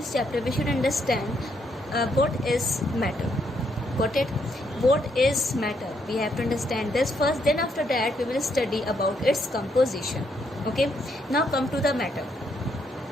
chapter, we should understand what is matter. Got it? What is matter? We have to understand this first, then after that we will study about its composition. Okay, now come to the matter.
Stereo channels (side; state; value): both; normal; correlation 0.75